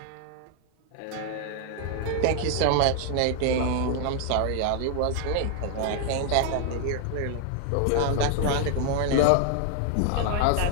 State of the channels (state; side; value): different; both; correlation 0.00